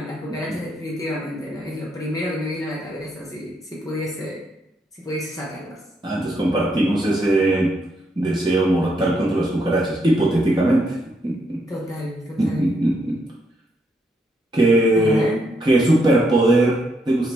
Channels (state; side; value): normal; both; correlation 0.76